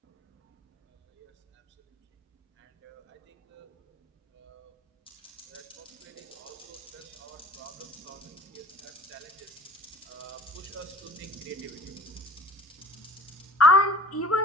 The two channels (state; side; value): normal; both; correlation 0.47